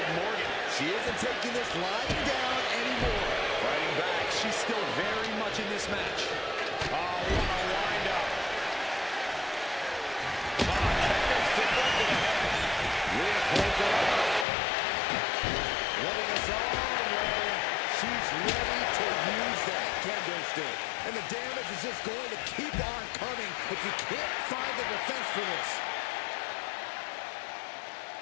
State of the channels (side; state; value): right; drops out; at 14.5 s